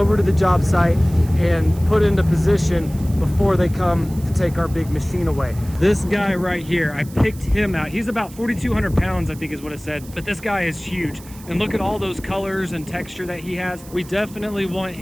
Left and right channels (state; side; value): noise; right; hiss, 20 dB below the sound